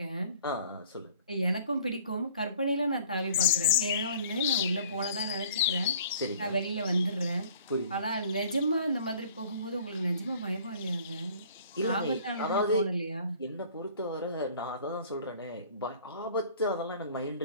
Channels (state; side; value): inverted; both; correlation -0.52